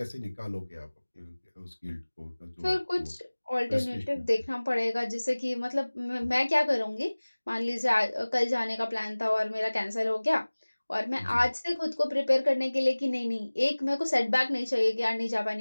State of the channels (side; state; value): both; inverted; correlation -1.00